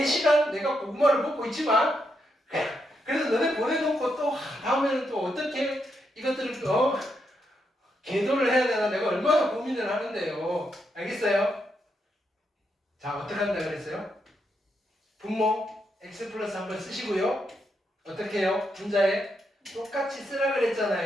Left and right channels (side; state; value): both; normal; correlation 0.81